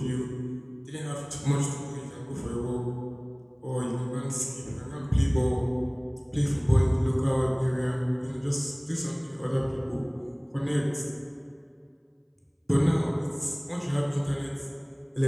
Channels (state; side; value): identical; both; correlation 1.00